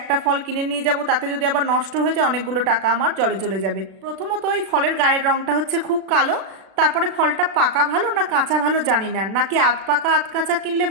ফল কিনে নিয়ে যাব, তাতে যদি আবার নষ্ট হয়ে যায় অনেকগুলো টাকা আমার জলে চলে যাবে। প্রথমত এই ফলের গায়ের রংটা হচ্ছে খুব কালো। তারপরে ফলটা পাকা ভালো না কাঁচা ভালো জানি না, নাকি আধ পাকা আধ কাঁচা কিনলে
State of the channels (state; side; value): late; left; 36 ms